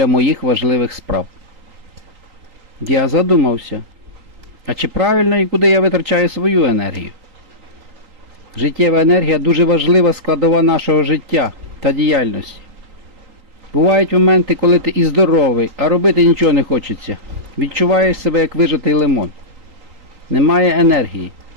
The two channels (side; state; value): left; late; 3.8 ms